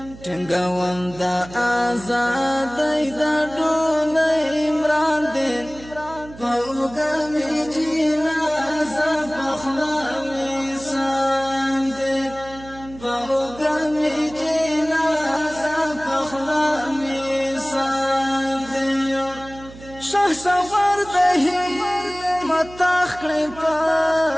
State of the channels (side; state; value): right; noise; hum, 18 dB below the sound